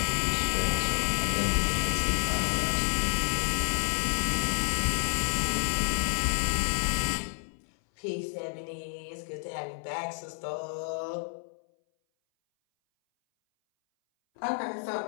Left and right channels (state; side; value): silent; right; 58 dB below the other